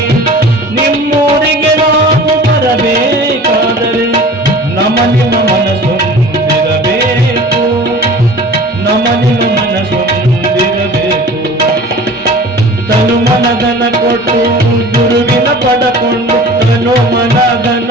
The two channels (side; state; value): both; normal; correlation 0.42